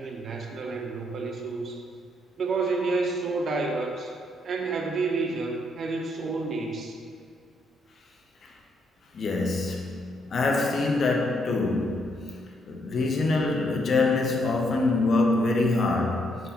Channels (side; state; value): both; normal; correlation 0.74